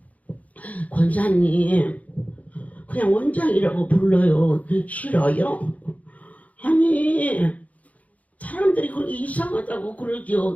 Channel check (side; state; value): right; late; 0.071 ms